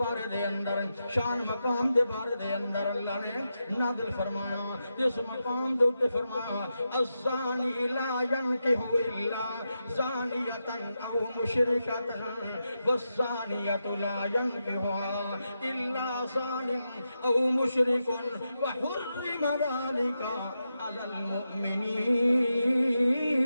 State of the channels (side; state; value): both; inverted; correlation -0.87